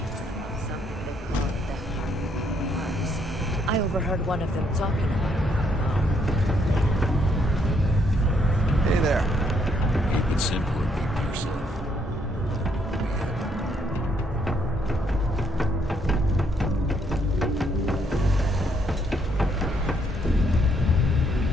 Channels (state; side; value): normal; both; correlation 0.71